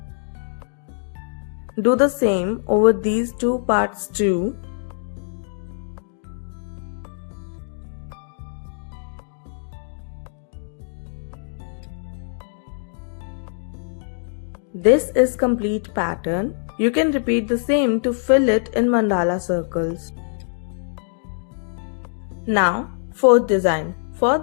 Do the same over these two parts too. This is complete pattern. You can repeat the same to fill it in mandala circles. Now, fourth design. For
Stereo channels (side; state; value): right; silent; digital silence